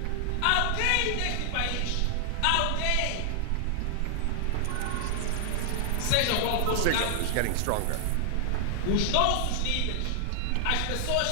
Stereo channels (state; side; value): different; both; correlation 0.00